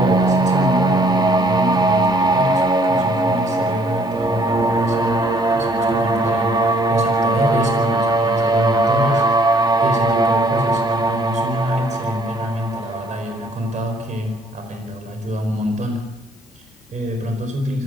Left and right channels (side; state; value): both; normal; correlation 0.63